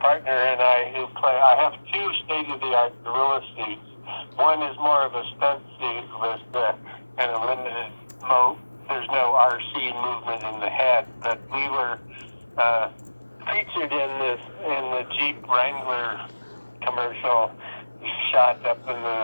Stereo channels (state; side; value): inverted; both; correlation -1.00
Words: and I have 2 state-of-the-art gorilla suits. One is more of a stunt suit with kind of limited there's no RC movement in the head, but we were featured in the Jeep Wrangler commercial shot up in